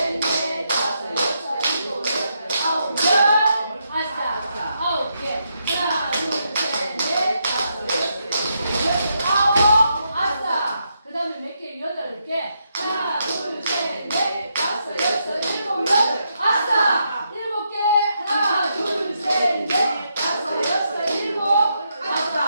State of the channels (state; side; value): inverted; both; correlation -0.80